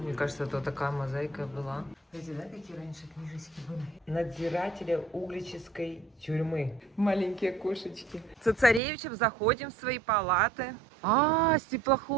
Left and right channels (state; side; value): drops out; left; at 8.8 s